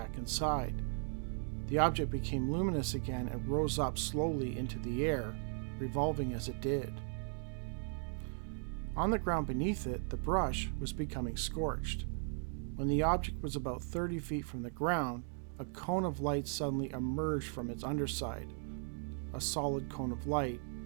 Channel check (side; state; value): left; silent; 53 dB below the other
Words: inside. The object became luminous again and rose up slowly into the air, revolving as it did. On the ground beneath it, the brush was becoming scorched. When the object was about 30 feet from the ground, a cone of light suddenly emerged from its underside. A solid cone of light.